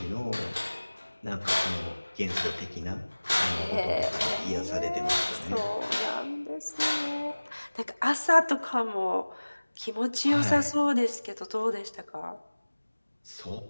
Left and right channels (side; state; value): both; inverted; correlation -1.00